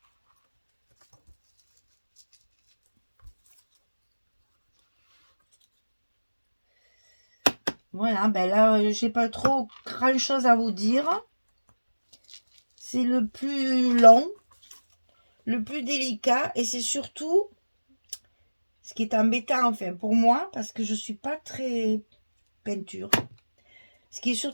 Voilà, ben là, j'ai pas trop grand chose à vous dire. C'est le plus long, le plus délicat, et c'est surtout ce qui est embêtant, enfin, pour moi, parce que je suis pas très peinture. Ce qui est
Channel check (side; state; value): both; inverted; correlation -1.00